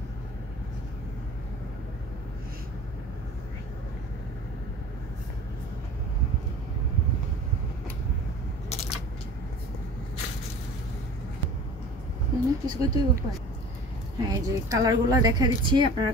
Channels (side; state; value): both; normal; correlation 0.42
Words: হ্যাঁ, এই যে কালারগুলো দেখা দিচ্ছি, আপনারা